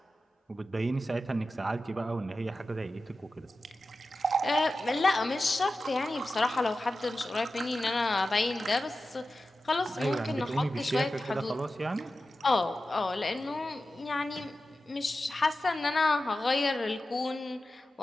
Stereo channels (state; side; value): normal; both; correlation 0.93